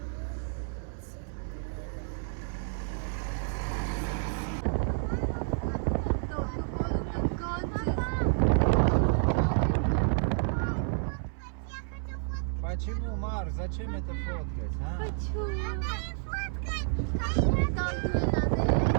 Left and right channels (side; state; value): left; silent; 58 dB below the other